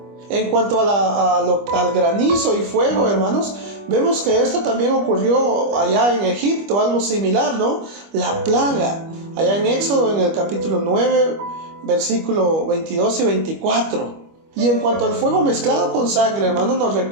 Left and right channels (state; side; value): late; left; 25 ms